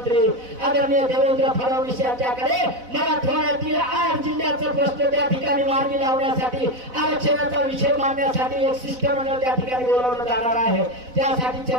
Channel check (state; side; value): late; left; 4.0 ms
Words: आदरणीय देवेंद्र फडणवीस यांच्याकडे मराठवाड्यातील 8 जिल्ह्याचा प्रश्न त्या ठिकाणी मार्गी लावण्यासाठी, आरक्षणाचा विषय मांडण्यासाठी एक शिष्टमंडळ त्या ठिकाणी बोलावलं जाणार आहे। त्यासाठी